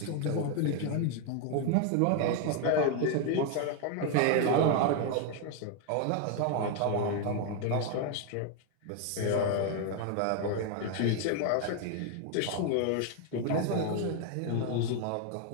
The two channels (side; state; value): both; different; correlation 0.01